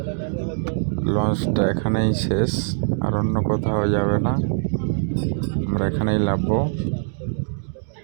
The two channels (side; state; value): left; silent; digital silence